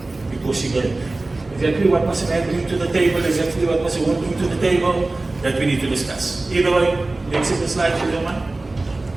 because she gave. exactly what must a man bring to the table, exactly what must a woman bring to the table, that we need to discuss. Either way, let's see the slide for you, man.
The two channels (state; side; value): quieter; left; 3.1 dB